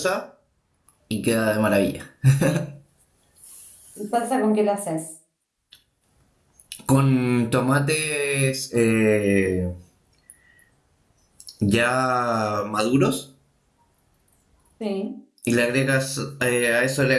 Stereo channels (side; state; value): both; identical; correlation 1.00